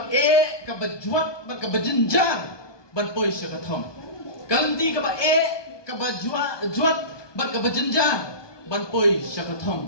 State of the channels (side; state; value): right; late; 1.2 ms